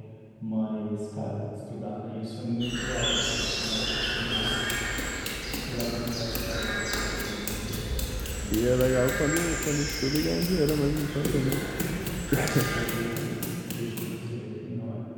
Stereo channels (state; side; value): identical; both; correlation 1.00